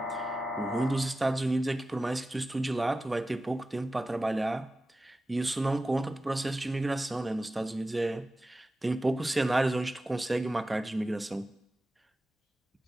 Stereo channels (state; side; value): normal; both; correlation 0.95